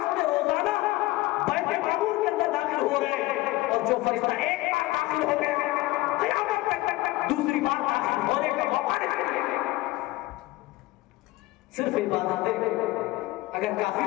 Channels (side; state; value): right; quieter; 19.3 dB